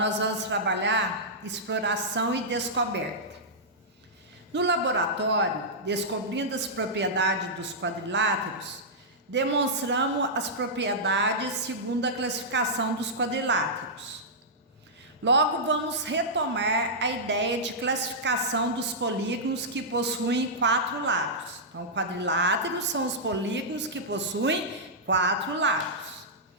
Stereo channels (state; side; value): normal; both; correlation -0.12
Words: vamos trabalhar exploração e descoberta. No laboratório, descobrindo as propriedades dos quadriláteros, demonstramos as propriedades segundo a classificação dos quadriláteros. Logo, vamos retomar a ideia de classificação dos polígonos que possuem 4 lados. Então, quadriláteros são os polígonos que possuem 4 lados.